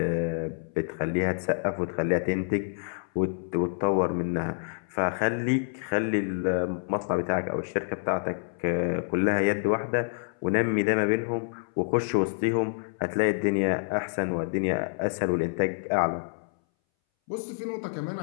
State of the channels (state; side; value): silent; right; 60 dB below the other